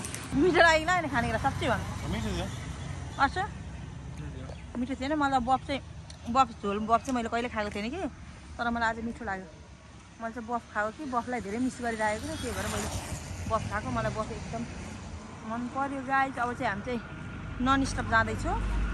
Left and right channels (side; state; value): both; identical; correlation 1.00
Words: लाग्यो होइन खानेकुरा साँच्चै भन्नु अच्छा मिठो थिएन मलाई बफ झोल बफ चाहिँ मैले कहिले खाएको थिएन कि तर मलाई आज मिठो लाग्यो मैले चाहिँ बफ खाएको कि बफलाई धेरै मिस गरिरहेको थिएँ त्यही भएर मैले बफ खाएको मलाई बफ एकदम मन पर्यो गाइस अब चाहिँ हामी चाहिँ नन स्टप जाँदैछौँ